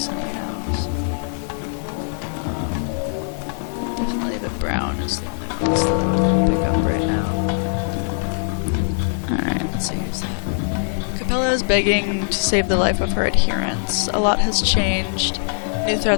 anyhow, so definitely the brown is the only ones that I want to pick up right now. Alright, let's see who's that. Capella is begging to save the life of her adherents. A lot has changed. New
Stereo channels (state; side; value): silent; right; 65 dB below the other